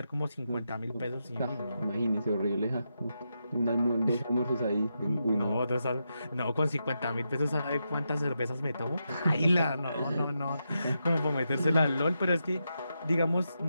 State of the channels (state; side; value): inverted; both; correlation -0.85